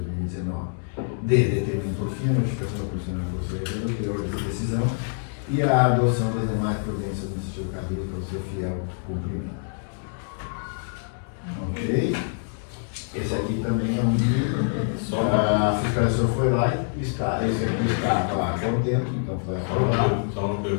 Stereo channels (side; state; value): right; silent; digital silence